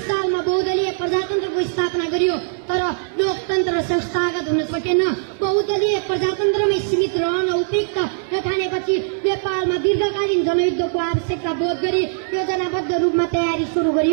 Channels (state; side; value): silent; left; digital silence